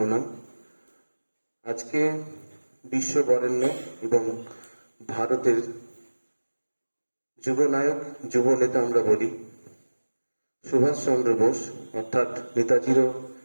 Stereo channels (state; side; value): inverted; both; correlation -1.00